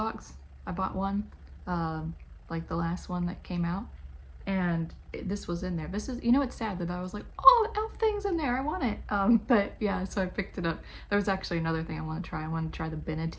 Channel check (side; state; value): both; identical; correlation 1.00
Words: I bought one, like the last one that came out, and this was in there. This is, you know, it's sad that I was like, oh, the e.l.f. thing's in there, I want it. But yeah, so I picked it up. There was actually another thing I want to try. I wanted to try the